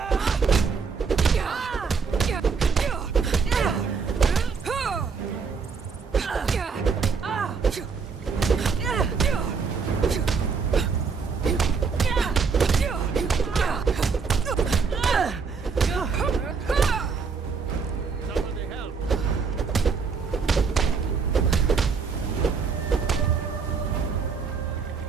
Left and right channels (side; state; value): left; quieter; 5.4 dB